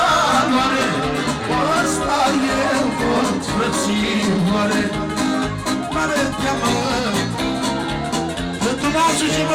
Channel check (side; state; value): both; identical; correlation 1.00